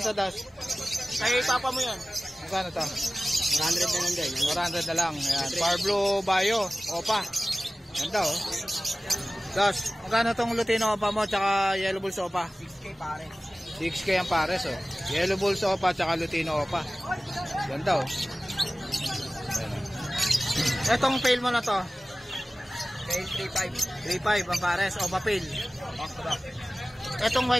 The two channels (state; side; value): normal; both; correlation 0.97